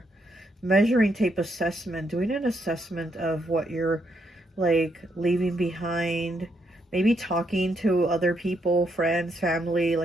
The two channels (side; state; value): both; normal; correlation 0.77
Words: Measuring tape assessment. Doing an assessment of what you're like leaving behind. Maybe talking to other people, friends, family,